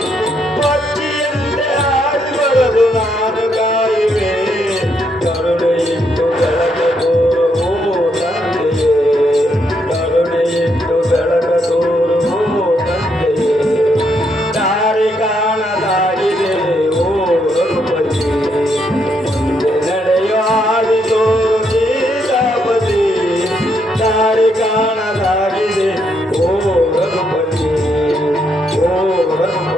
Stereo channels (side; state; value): both; normal; correlation 0.76